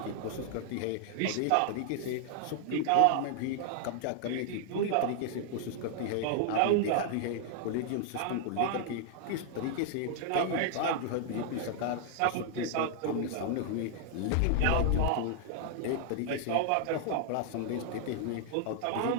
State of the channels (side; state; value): both; different; correlation 0.00